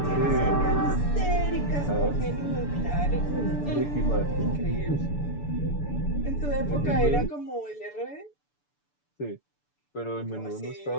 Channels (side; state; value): right; late; 6.9 ms